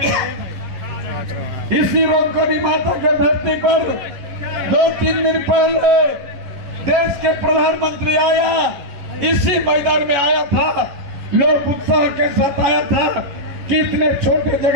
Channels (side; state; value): left; late; 11 ms